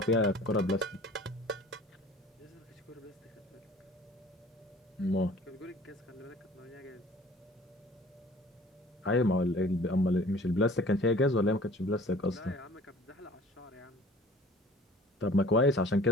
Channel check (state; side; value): normal; both; correlation 0.48